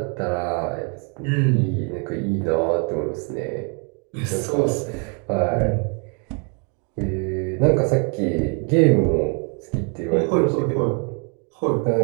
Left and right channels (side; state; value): left; quieter; 37.4 dB